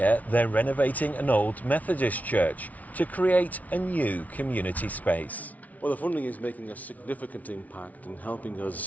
they're renovating an old Methodist church to create a new community space. Well, the funding is making a significant impact and helping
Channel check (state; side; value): late; right; 0.072 ms